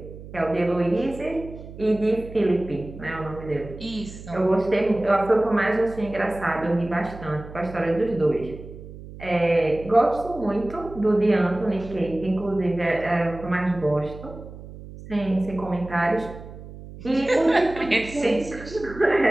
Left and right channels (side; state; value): right; noise; hum, 15 dB below the sound